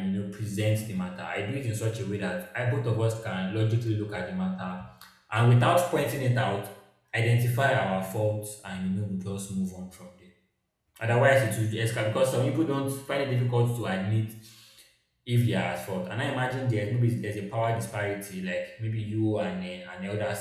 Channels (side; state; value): both; identical; correlation 1.00